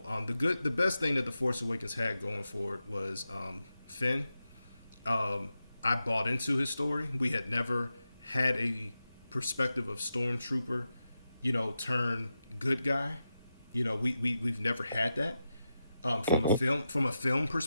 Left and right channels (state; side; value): inverted; both; correlation -0.89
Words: best thing that the Force Awakens had going for it was Finn. I bought into his story. We had never had a perspective of stormtrooper, turn good guy. We've never had that from a film